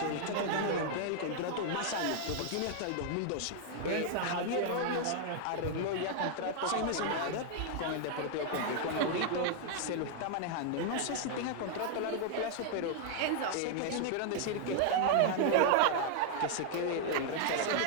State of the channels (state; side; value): different; both; correlation 0.00